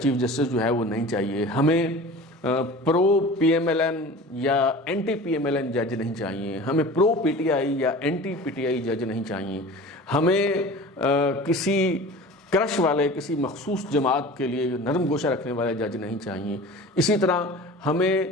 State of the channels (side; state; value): both; normal; correlation 0.38